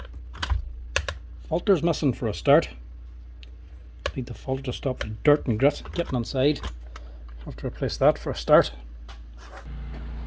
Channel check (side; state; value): both; identical; correlation 1.00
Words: Filter's missing for a start. Need the filter to stop the dirt and grit getting inside. Have to replace that for a start.